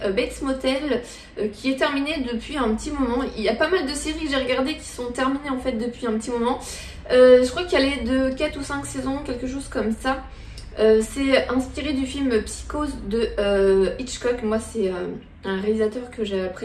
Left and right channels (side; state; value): both; identical; correlation 1.00